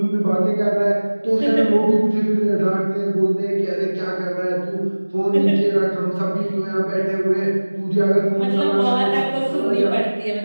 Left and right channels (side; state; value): both; inverted; correlation -1.00